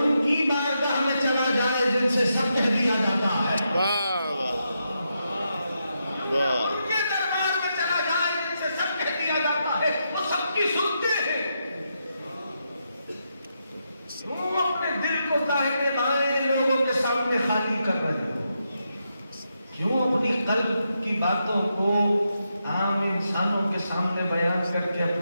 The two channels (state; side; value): inverted; both; correlation -0.83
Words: کی بارگاہ میں چلا جائے جن سے سب کہہ دیا جاتا ہے. ان کے دربار میں چلا جائے جن سے سب کہہ دیا جاتا ہے، وہ سب کی سنتے ہیں. کیوں اپنے دل کو داہنے بائیں لوگوں کے سامنے خالی کر رہے ہو؟ کیوں اپنی قلب کی باتوں کو عام انسانوں کے سامنے بیان کر کے